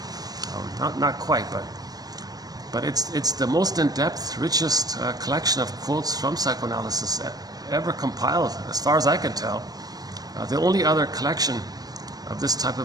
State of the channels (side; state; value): left; late; 0.19 ms